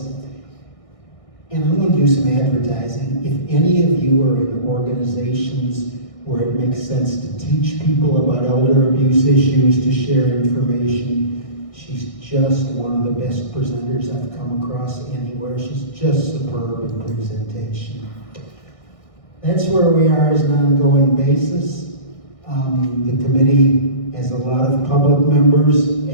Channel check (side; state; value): right; late; 1.6 ms